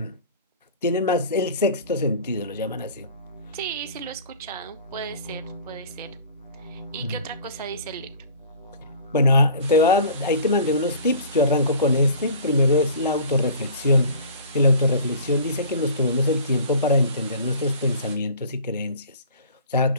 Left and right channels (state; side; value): inverted; both; correlation -0.44